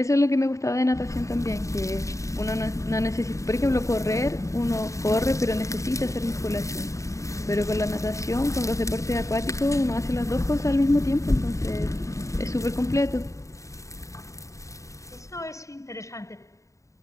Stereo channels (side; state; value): right; late; 0.15 ms